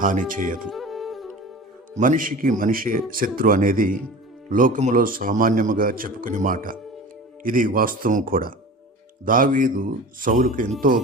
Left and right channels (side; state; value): both; normal; correlation 0.36